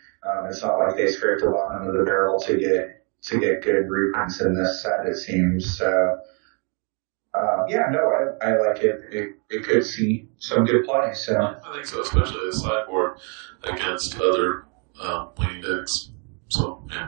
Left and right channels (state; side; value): quieter; left; 37.5 dB